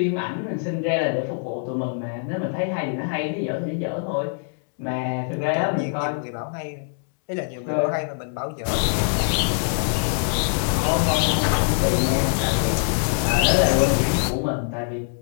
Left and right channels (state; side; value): silent; right; digital silence